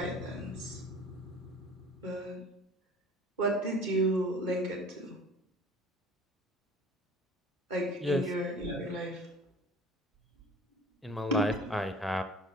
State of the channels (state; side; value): normal; both; correlation 0.44